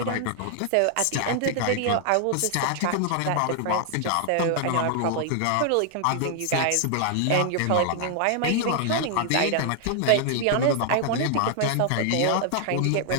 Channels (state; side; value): different; both; correlation 0.00